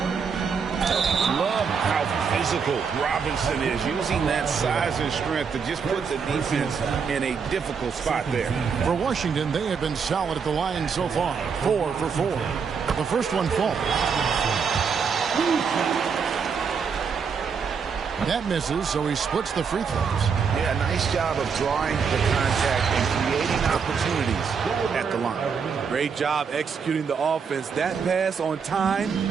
Love how physical Robinson is, using that size and strength to just put the defense in a difficult spot there. For Washington, they have been solid at the line so far. 4 for 4. The first one falls. That misses, so he splits the free throws. Yeah, nice job of drawing the contact and creating opportunities at the line. Great job executing the offense. That pass on time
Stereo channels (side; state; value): left; quieter; 6.1 dB